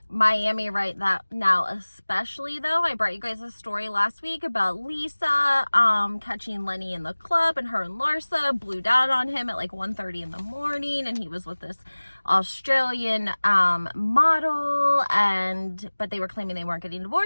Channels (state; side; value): inverted; both; correlation -1.00